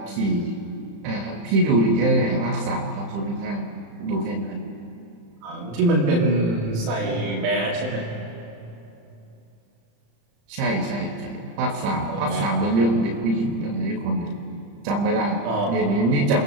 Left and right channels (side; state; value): left; late; 35 ms